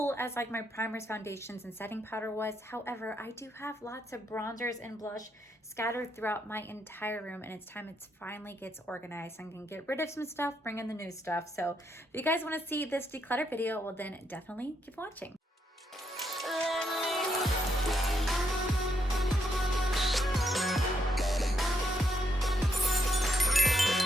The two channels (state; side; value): normal; both; correlation 0.78